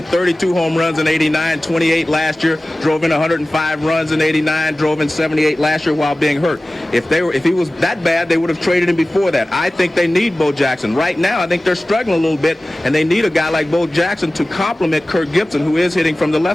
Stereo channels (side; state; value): both; normal; correlation 0.97